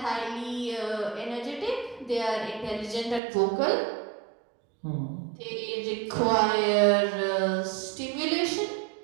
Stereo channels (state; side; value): drops out; left; at 3.2 s